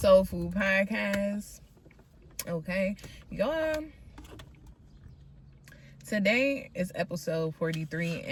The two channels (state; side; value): identical; both; correlation 1.00